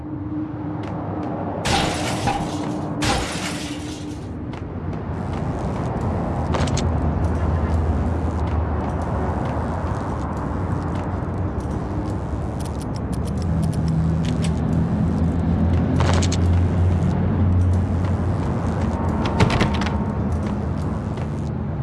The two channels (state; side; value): identical; both; correlation 1.00